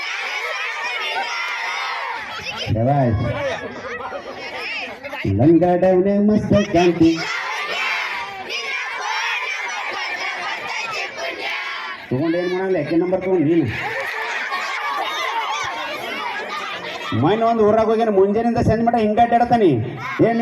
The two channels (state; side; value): identical; both; correlation 1.00